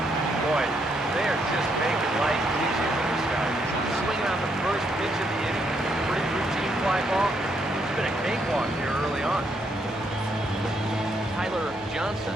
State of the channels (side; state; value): both; normal; correlation 0.75